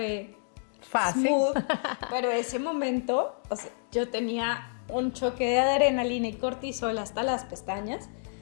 fácil. Smooth, pero ese momento, o sea, yo tenía un choque de adrenalina y cortisol hasta las pestañas.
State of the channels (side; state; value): right; silent; digital silence